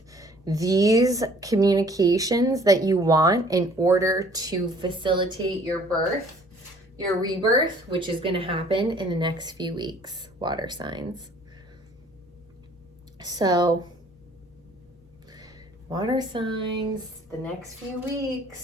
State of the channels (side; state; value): both; normal; correlation 0.56